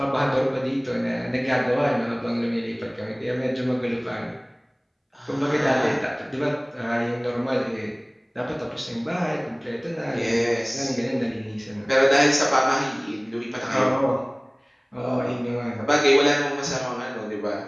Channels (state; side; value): identical; both; correlation 1.00